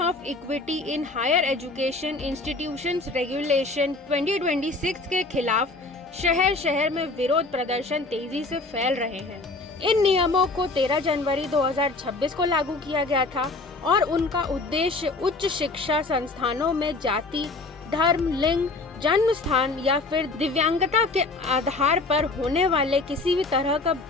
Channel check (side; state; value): right; quieter; 3.4 dB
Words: equity in higher education institutions regulation 2026 के खिलाफ शहर शहर में विरोध प्रदर्शन तेजी से फैल रहे हैं। इन नियमों को 13 जनवरी 2026 को लागू किया गया था और उनका उद्देश्य उच्च शिक्षा संस्थानों में जाति, धर्म, लिंग, जन्म स्थान या फिर दिव्यांगता के आधार पर होने वाले किसी भी तरह का